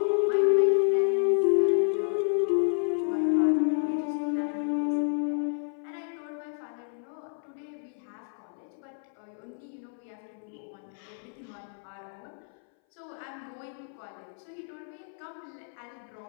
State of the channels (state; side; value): silent; right; 58 dB below the other